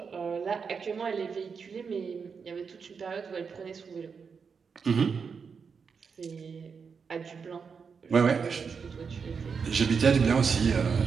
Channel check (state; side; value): quieter; left; 5.8 dB